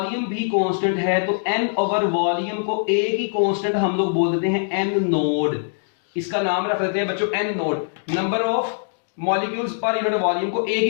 भी कांस्टेंट है, तो n ओवर वॉल्यूम को एक ही कांस्टेंट हम लोग बोल देते हैं n नोड। इसका नाम रख देते हैं बच्चों n node. Number of molecules per unit volume को एक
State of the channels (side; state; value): right; silent; digital silence